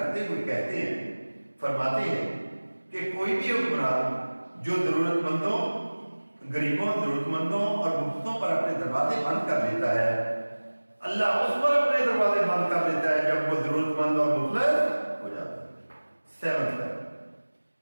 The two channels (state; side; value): inverted; both; correlation -1.00